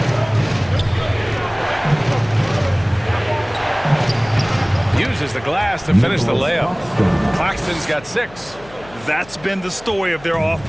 Uses the glass to finish the layup. Claxton's got 6. That's been the story of their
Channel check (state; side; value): noise; left; hum, 21 dB below the sound